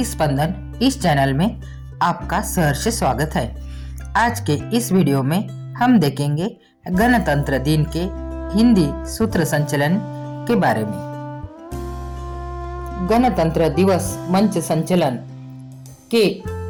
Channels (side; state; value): both; identical; correlation 1.00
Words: स्पंदन इस चैनल में आपका सहर्ष स्वागत है। आज के इस वीडियो में हम देखेंगे गणतंत्र दिन के हिंदी सूत्र संचलन के बारे में। गणतंत्र दिवस मंच संचलन के